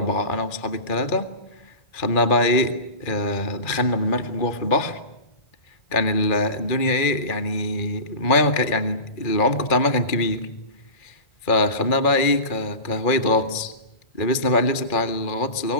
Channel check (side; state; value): right; late; 2.3 ms